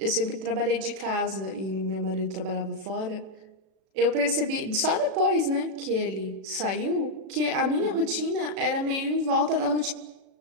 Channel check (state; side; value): late; left; 36 ms